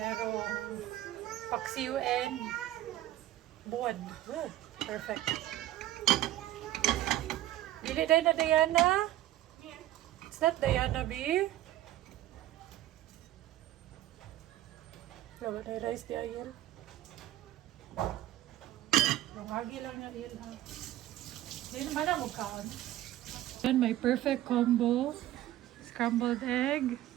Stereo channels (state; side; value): quieter; left; 14.3 dB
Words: paksiw and buwan. Good. Perfect. Dili day na Diana? Is that Diana B? Lawa na rice di ayun. Rumagi lang niya yun ha. Hindi naman na mukhaan. Yan, my perfect combo. Scrambled egg,